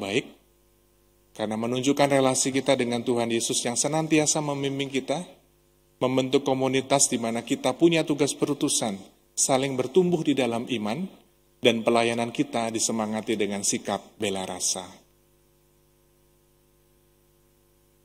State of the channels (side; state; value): both; identical; correlation 1.00